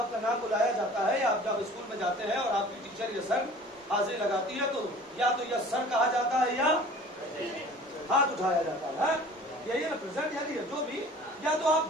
नाम बुलाया जाता है, आप जब स्कूल में जाते हैं और आपकी टीचर या सर हाजिरी लगाती है, तो या तो यस सर कहा जाता है या हाथ उठाया जाता है। यही है ना, प्रेजेंट यानी जो भी, या तो आप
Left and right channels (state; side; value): normal; both; correlation 0.46